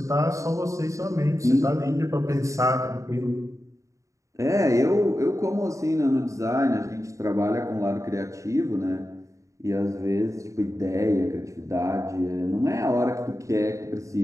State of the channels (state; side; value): late; left; 0.15 ms